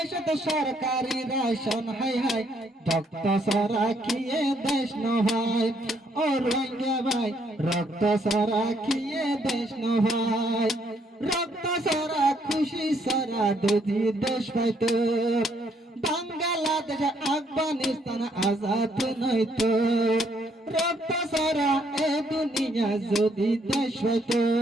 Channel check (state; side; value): normal; both; correlation 0.70